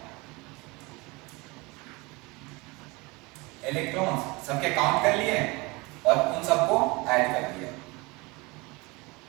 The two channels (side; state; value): left; quieter; 25.0 dB